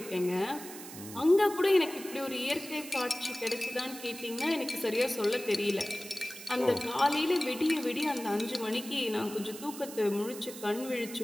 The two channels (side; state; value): right; noise; hiss, 13 dB below the sound